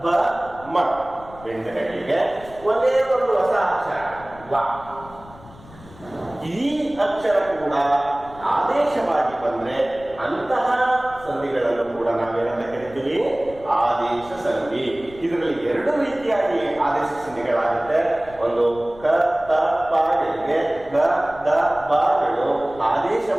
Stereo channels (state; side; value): noise; left; rumble, 21 dB below the sound